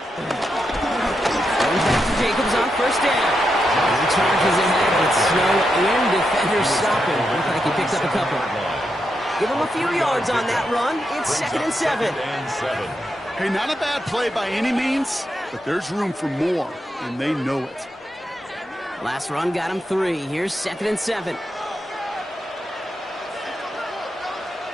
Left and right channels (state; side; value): normal; both; correlation 0.85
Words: Going back to Jacobs on 1st down. He charges ahead with snow and defenders stopping. Looks like he picks up a couple. Give him a few yards on that run. It's 2nd and 7. Hey, not a bad play by any means, but there's room for more, and they know it. Last run got him 3. Here's 2nd and 7.